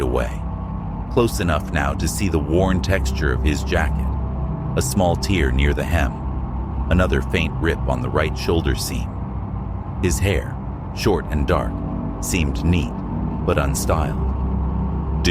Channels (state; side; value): identical; both; correlation 1.00